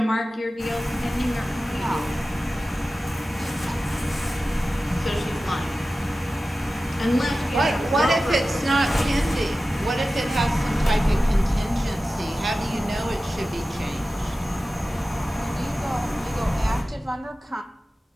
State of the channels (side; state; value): both; normal; correlation 0.95